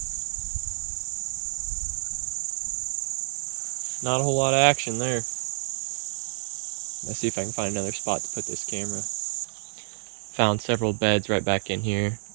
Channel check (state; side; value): silent; left; digital silence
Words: Not a whole lot of action there. Let's see if I can find another spot to put this camera. Found several beds right back in here.